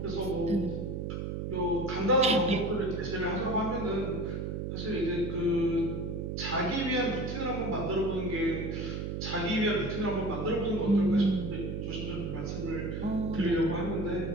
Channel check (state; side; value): noise; right; hum, 3 dB below the sound